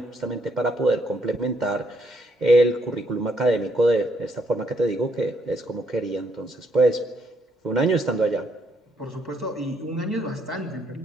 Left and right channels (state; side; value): normal; both; correlation 0.72